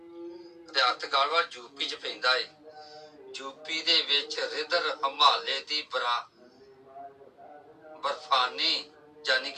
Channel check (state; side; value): identical; both; correlation 1.00